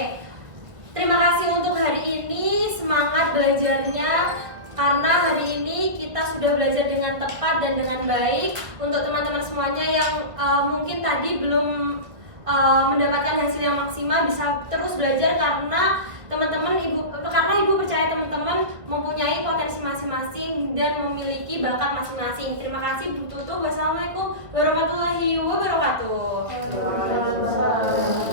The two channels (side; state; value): left; late; 1.7 ms